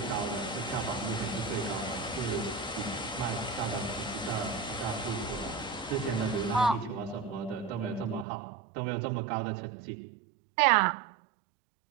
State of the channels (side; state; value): left; drops out; at 8.2 s